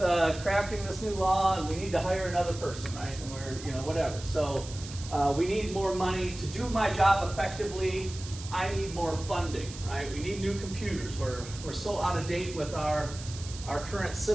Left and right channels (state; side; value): noise; right; hiss, 13 dB below the sound